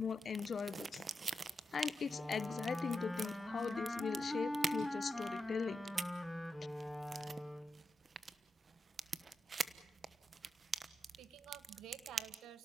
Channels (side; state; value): both; normal; correlation 0.88